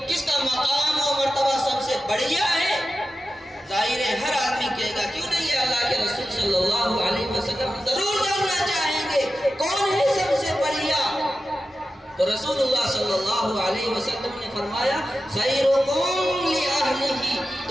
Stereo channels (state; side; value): normal; both; correlation 0.92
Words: کس کا مقام و مرتبہ سب سے بڑھیا ہے؟ ظاہر ہے ہر آدمی کہے گا کیوں نہیں ہے، اللہ کے رسول صلی اللہ علیہ وسلم ضرور جاننا چاہیں گے کون ہے سب سے بڑھیا۔ تو رسول اللہ صلی اللہ علیہ وسلم نے فرمایا، خیرکم لأہلہ،